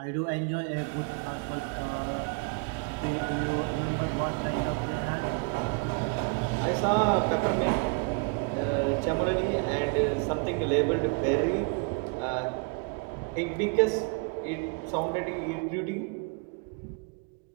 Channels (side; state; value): left; quieter; 32.1 dB